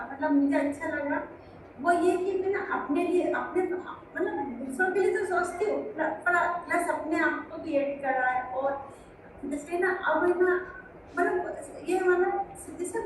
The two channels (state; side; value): identical; both; correlation 1.00